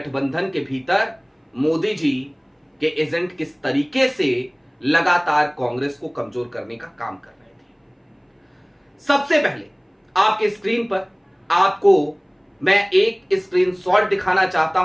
के भीतर मोदी जी के एजेंट किस तरीके से लगातार कांग्रेस को कमजोर करने का काम कर रहे थे। सबसे पहले आपके स्क्रीन पर आपको मैं एक स्क्रीनशॉट दिखाना चाहता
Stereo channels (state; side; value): identical; both; correlation 1.00